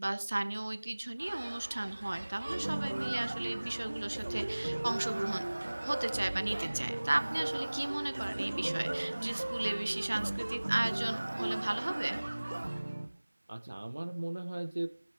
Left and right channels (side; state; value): both; inverted; correlation -1.00